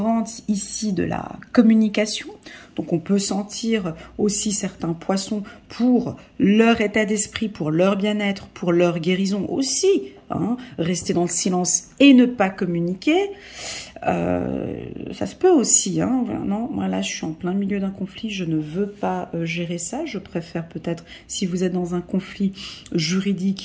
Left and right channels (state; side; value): identical; both; correlation 1.00